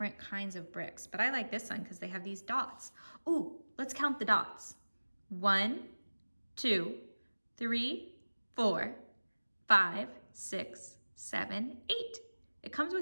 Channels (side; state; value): both; inverted; correlation -1.00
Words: kinds of bricks, but I like this one because they have these dots. Ooh, let's count the dots. 1, 2, 3, 4, 5, 6, 7, 8. It comes